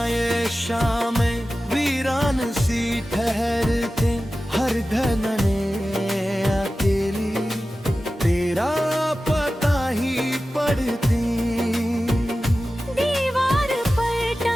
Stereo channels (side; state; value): both; normal; correlation 0.95